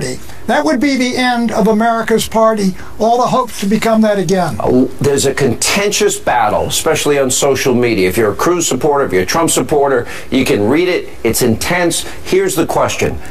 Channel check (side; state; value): both; identical; correlation 1.00